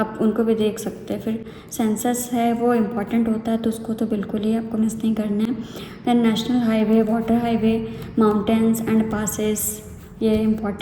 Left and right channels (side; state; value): both; identical; correlation 1.00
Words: उनको भी देख सकते हैं। फिर सेंसस है वो इम्पॉर्टेंट होता है तो उसको तो बिल्कुल ही आपको मिस नहीं करना है। Then national highway, water highway, mountains and passes, ये